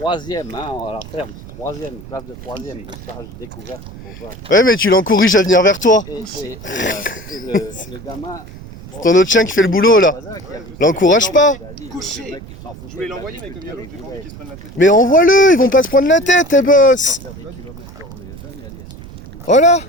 hein, à la ferme, 3e, classe de 3e, de stage découverte. Ouais, mais tu l'encourages à venir vers toi. Et le gamin... C'est ton autre chien qui fait le boulot, là. L'encourage pas. Couchez. Je voulais l'envoyer, mais comme il y a l'autre, j'ai pas envie qu'il se prenne la tête. Mais envoie-le, ils vont pas se prendre la tête, tes boss. Voilà.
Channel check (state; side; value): noise; right; rumble, 16 dB below the sound